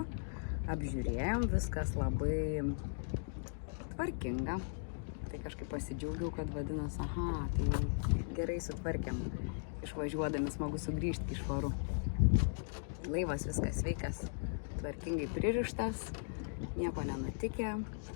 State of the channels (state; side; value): silent; right; digital silence